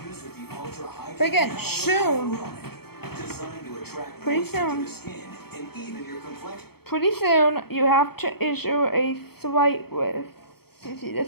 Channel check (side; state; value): right; late; 0.96 ms